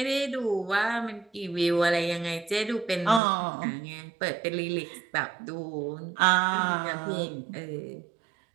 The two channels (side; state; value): left; drops out; at 3.2 s